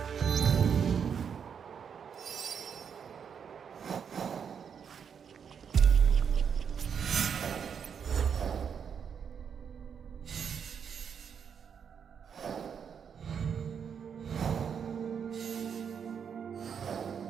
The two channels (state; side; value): quieter; left; 7.2 dB